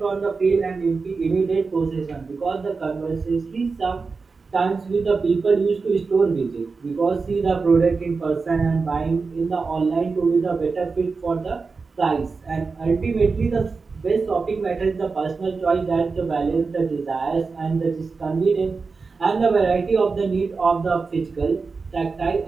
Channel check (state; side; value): quieter; left; 4.5 dB